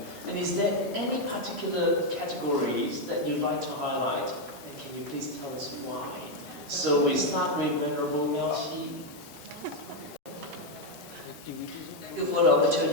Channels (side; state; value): both; normal; correlation 0.03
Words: And is there any particular categories that you'd like to highlight? And can you please tell us why? So we start with Venerable Miaoxi. Thank you for the